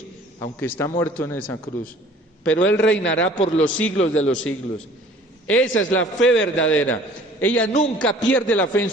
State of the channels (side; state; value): both; normal; correlation 0.51